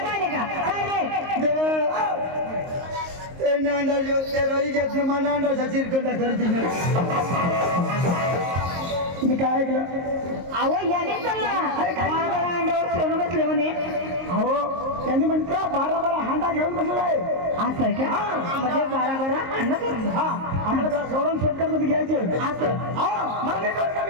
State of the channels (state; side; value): late; left; 22 ms